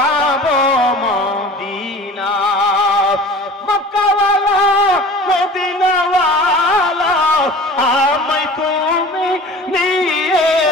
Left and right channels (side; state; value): both; normal; correlation 0.41